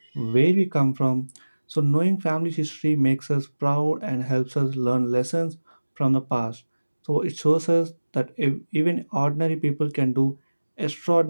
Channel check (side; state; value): both; inverted; correlation -1.00